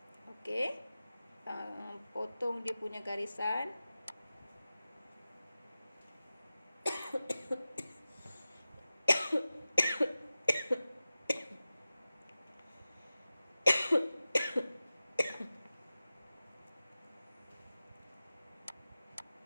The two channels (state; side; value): inverted; both; correlation -0.94